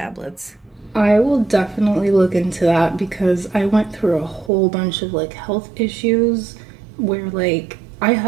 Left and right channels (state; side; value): drops out; left; at 4.5 s